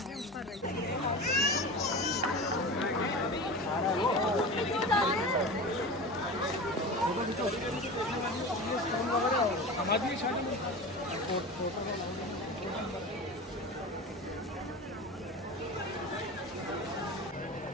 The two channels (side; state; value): both; normal; correlation 0.30